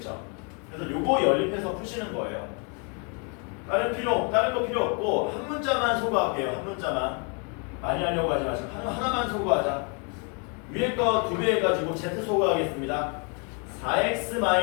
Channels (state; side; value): quieter; right; 36.4 dB